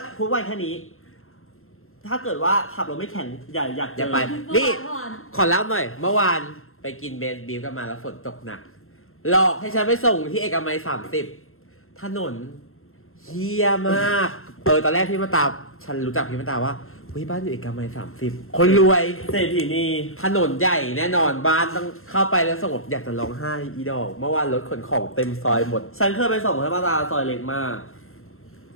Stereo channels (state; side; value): late; right; 0.62 ms